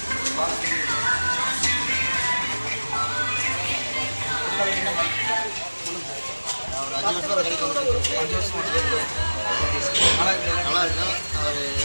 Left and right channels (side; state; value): both; inverted; correlation -1.00